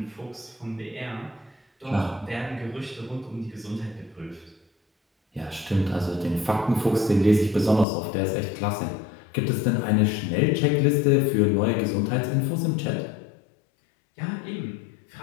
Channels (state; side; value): drops out; right; at 7.9 s